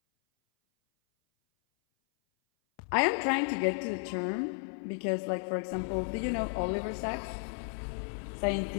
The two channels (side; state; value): right; silent; 56 dB below the other